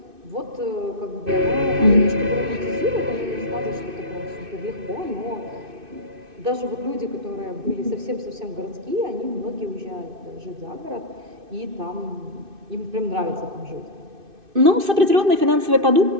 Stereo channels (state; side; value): late; left; 2.6 ms